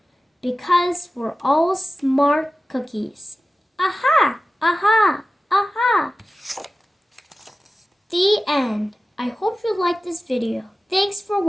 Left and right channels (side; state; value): both; normal; correlation 0.96